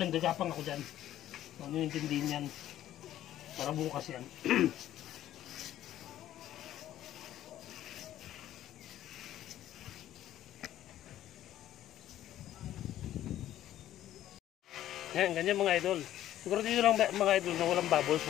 gagapang ako dyan. Huwag nyo intindihin yan. Para bukas yan. Yan, ganyan mga idol. Siguro dito lang mga idol na walang bubbles,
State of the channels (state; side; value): quieter; right; 12.8 dB